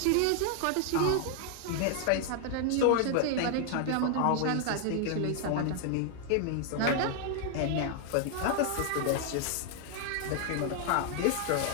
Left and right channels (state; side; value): different; both; correlation 0.00